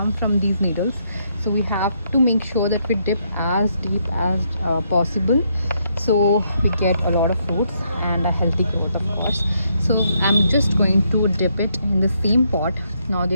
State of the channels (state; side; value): inverted; both; correlation -0.75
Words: from these needles. So we have to make sure that we dip as deep as possible, so we get a lot of roots and a healthy growth, of course. So I'm just going to dip it in the same pot. Now